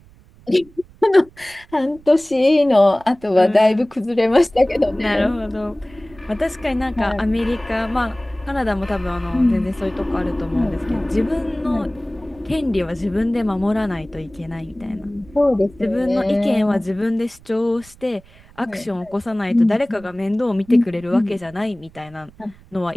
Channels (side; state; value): right; noise; rumble, 25 dB below the sound